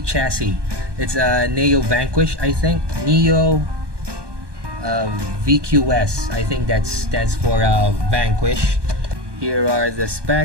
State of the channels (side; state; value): left; late; 1.2 ms